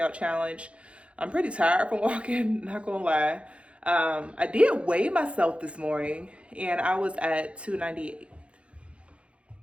challenge. I'm pretty tired from walking, not gonna lie. I did weigh myself this morning and I was at 298.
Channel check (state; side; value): late; left; 0.061 ms